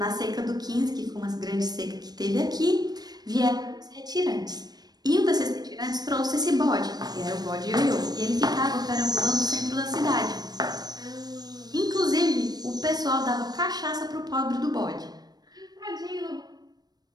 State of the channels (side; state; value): left; late; 0.19 ms